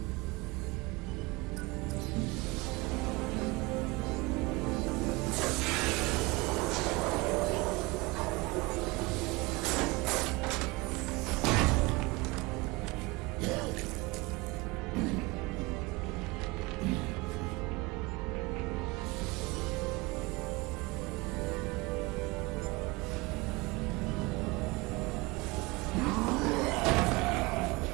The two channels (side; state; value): left; quieter; 23.7 dB